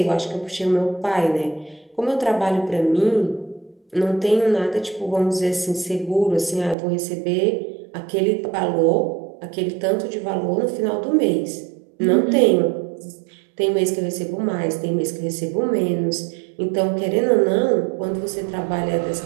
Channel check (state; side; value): drops out; left; at 6.8 s